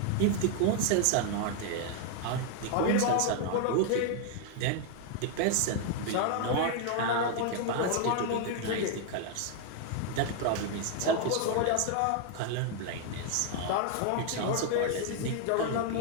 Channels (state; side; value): different; both; correlation 0.00